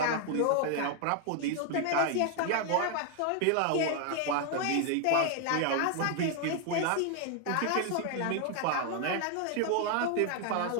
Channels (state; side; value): different; both; correlation 0.00